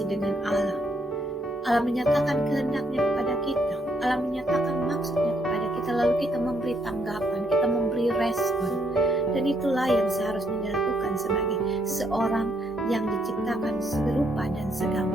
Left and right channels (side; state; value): both; normal; correlation 0.73